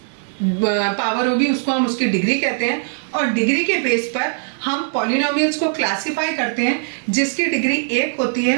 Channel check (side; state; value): left; silent; digital silence